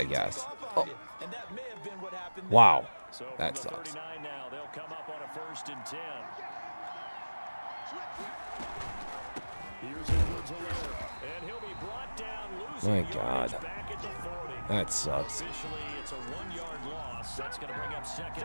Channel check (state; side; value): inverted; both; correlation -1.00